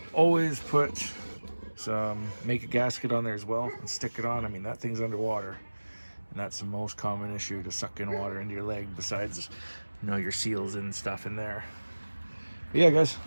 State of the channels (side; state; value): both; inverted; correlation -1.00